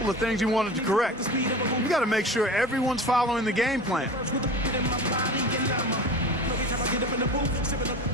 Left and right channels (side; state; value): both; normal; correlation 0.34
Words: of things he wanted to correct. You got to make sure everyone's following the game plan.